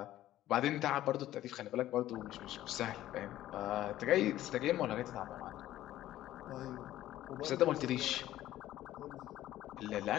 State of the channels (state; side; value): quieter; right; 13.9 dB